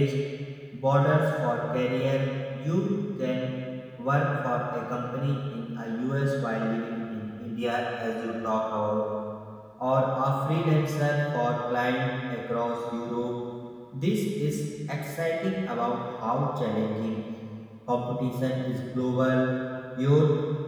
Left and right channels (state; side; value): identical; both; correlation 1.00